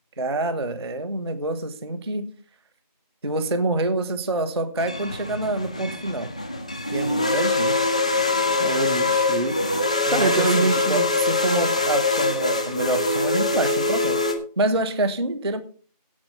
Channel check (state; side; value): inverted; both; correlation -0.37